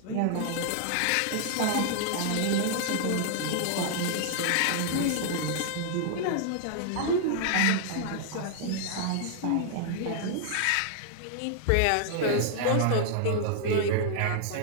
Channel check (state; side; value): different; both; correlation -0.01